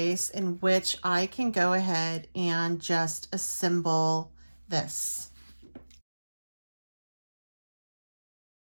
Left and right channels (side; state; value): both; inverted; correlation -1.00